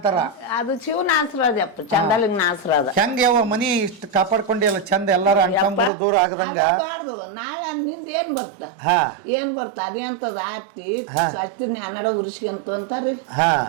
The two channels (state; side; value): drops out; left; at 5.9 s